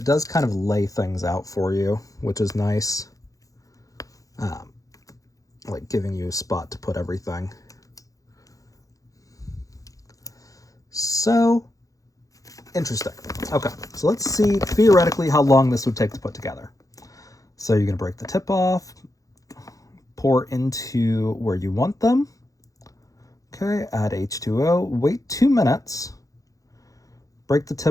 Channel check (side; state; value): right; late; 0.17 ms